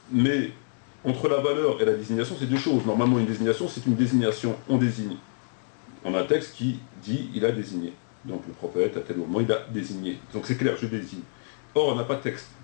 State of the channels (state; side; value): silent; right; digital silence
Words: mais entre la valeur et la désignation, c'est deux choses. Normalement, une désignation, c'est une désignation, on désigne. On a un texte qui dit il a désigné. Donc le prophète, à tel moment, il a désigné. Donc c'est clair, je désigne. Or, on n'a pas de texte.